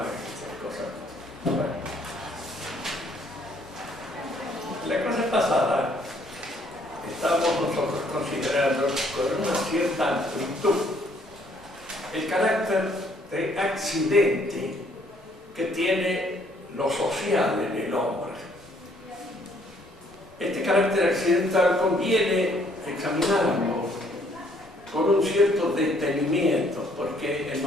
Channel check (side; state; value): both; normal; correlation 0.65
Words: y esas cosas. Bueno. La clase pasada estábamos nosotros considerando con una cierta amplitud el carácter de accidente que tiene lo social en el hombre. Este carácter accidental conviene examinarlo con un cierto detenimiento, porque en